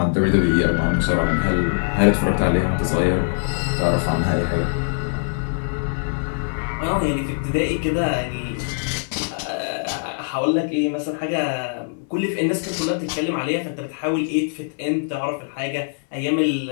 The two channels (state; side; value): silent; right; digital silence